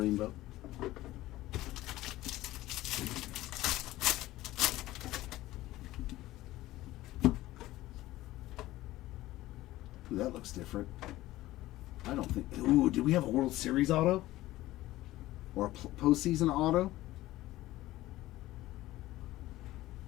Ooh, that looks different. I don't think... Ooh, did we have a World Series auto? Or a postseason auto?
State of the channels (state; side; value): quieter; right; 16.5 dB